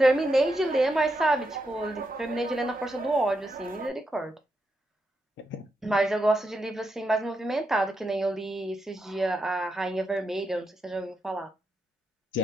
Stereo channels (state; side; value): normal; both; correlation 0.84